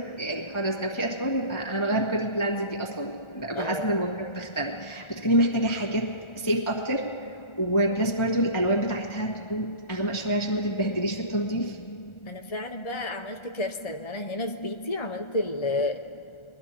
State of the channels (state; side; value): late; right; 1.4 ms